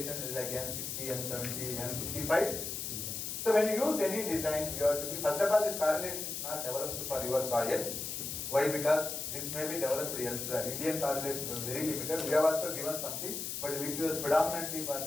like N60, N70, N55. So when you use any design, you have to be, first of all, this correlation is not developed for your soil. Why? Because this may be developed elsewhere. Indian correlations are very limited. We have also given something, but which was predominantly for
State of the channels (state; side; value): noise; left; hiss, 4 dB below the sound